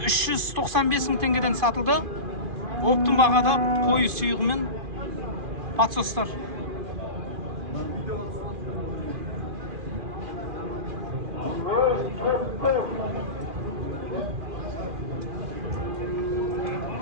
мың теңгеден сатылды. Оптың бағада қойы сүйғымен подсостар.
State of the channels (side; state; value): left; late; 2.4 ms